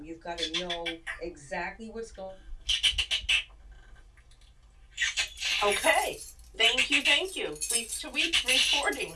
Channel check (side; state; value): both; identical; correlation 1.00